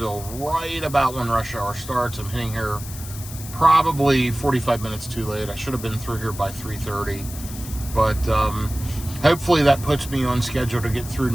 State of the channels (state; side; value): noise; left; hiss, 13 dB below the sound